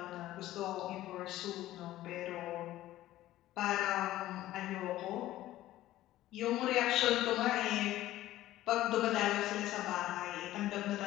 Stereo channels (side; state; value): right; quieter; 14.9 dB